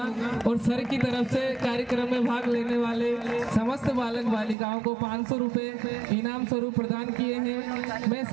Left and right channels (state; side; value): drops out; left; at 4.5 s